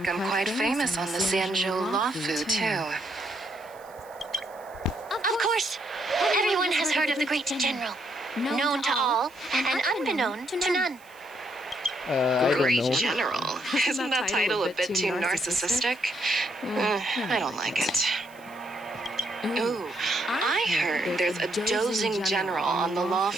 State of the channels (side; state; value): right; noise; hiss, 26 dB below the sound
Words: I'm quite famous on the Xianzhou Lawfu, too. Of course, everyone has heard of the great general. Known to all, and unbeknown to none. Great General? Isn't that title a bit too narcissistic? I don't like it. Ooh, I heard there's a dozing general on the